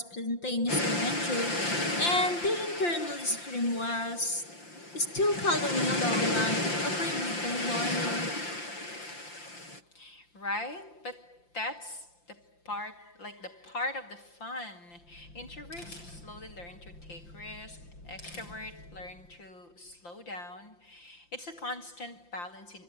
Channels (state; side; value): late; right; 5.8 ms